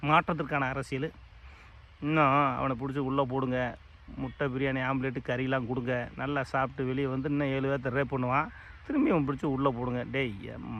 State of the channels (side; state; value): both; identical; correlation 1.00